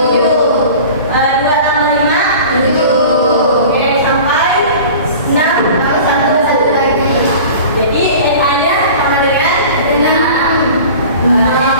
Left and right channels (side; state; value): both; inverted; correlation -0.40